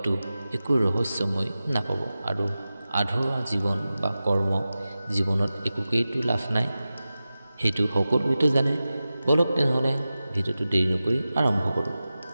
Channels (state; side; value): inverted; both; correlation -0.94